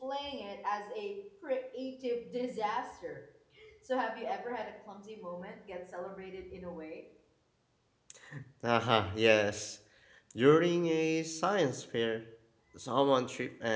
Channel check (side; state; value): both; identical; correlation 1.00